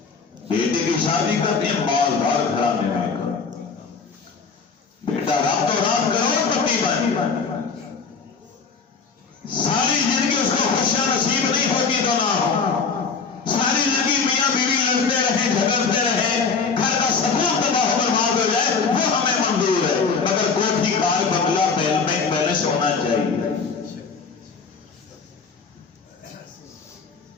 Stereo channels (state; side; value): quieter; right; 5.2 dB